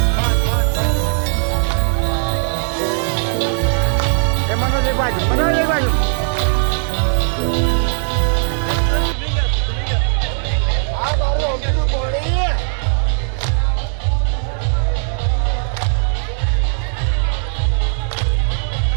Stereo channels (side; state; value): left; silent; 66 dB below the other